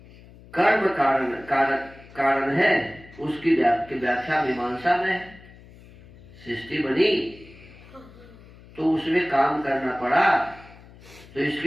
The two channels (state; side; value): noise; left; hum, 22 dB below the sound